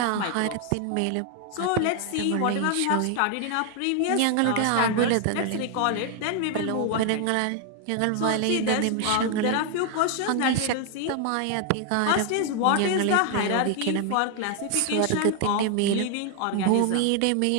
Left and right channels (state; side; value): different; both; correlation 0.00